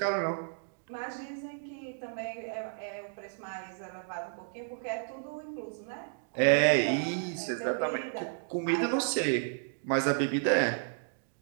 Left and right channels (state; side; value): silent; left; digital silence